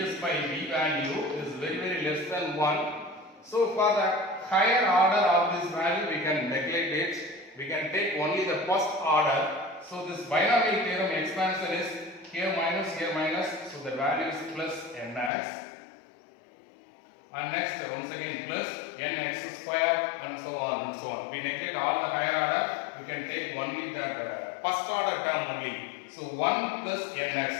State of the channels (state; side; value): drops out; right; at 15.3 s